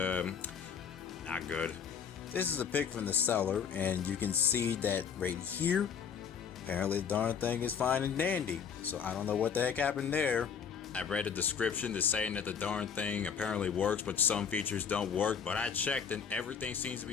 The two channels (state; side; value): quieter; right; 7.3 dB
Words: good. This is a pic from the seller, and you can see that right here. Apparently the darn thing is fine and dandy. So I don't know what the heck happened there. I read a description that's saying that the darn thing apparently works, but some features don't work. But I checked and everything seems to